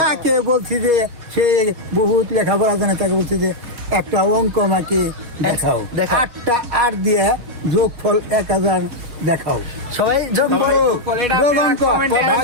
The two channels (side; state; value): left; late; 3.9 ms